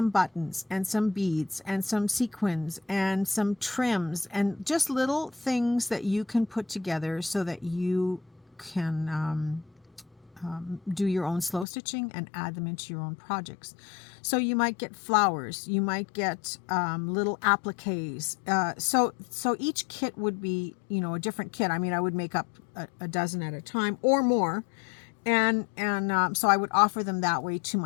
buttons and some beads and some sequins and some trims and just little things that you can put together so that you can do your own slow stitching and add them into your own projects. So you might get flowers, you might get little appliques. So each kit would be, you know, a different kit. I mean, I would make up a dozen at a time or more. And so I would offer them that way to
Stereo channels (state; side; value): drops out; right; at 11.7 s